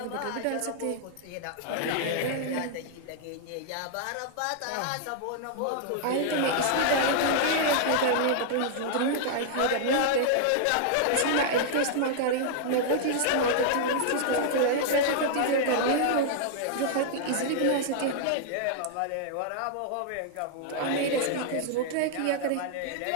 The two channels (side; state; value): both; different; correlation -0.01